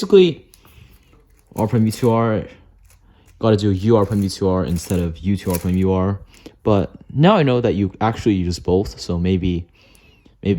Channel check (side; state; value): both; identical; correlation 1.00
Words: R prime U2R, got to do UR prime U2R instead of U2R prime UR. But now I know that you actually use both. So maybe